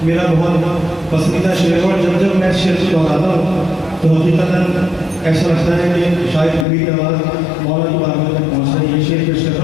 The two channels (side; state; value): right; drops out; at 6.7 s